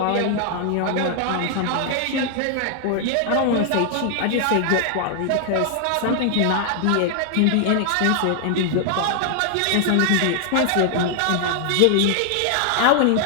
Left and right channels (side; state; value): both; different; correlation 0.00